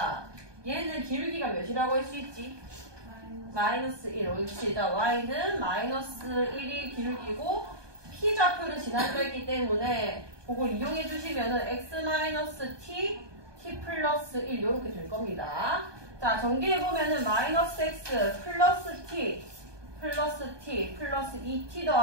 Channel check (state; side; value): late; left; 1.2 ms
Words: 얘는 길기가 몇이라고 할 수 있지? 마이너스 1. 옳지. 자, y는 마이너스 1이 길기고 P좌표를 지나려 했기 때문에 그걸 이용해 주시면은 x-t, t 플러스 1 이렇게 될 겁니다. 자, 전개해 보면은 마이너스 x 플러스 t 플러스 t 플러스 2t